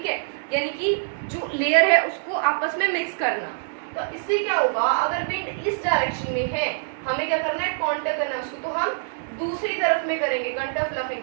है, यानी कि जो लेयर है उसको आपस में मिक्स करना। तो इससे क्या होगा, अगर विंड इस डायरेक्शन में है, हमें क्या करना है, कॉन्टर करना है उसको, तो हम दूसरी तरफ में करेंगे कंटर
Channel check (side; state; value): left; silent; digital silence